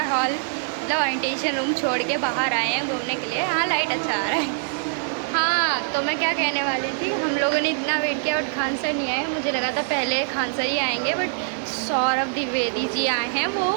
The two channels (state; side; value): silent; left; 63 dB below the other